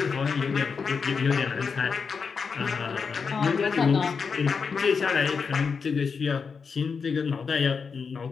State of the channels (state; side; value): quieter; right; 5.5 dB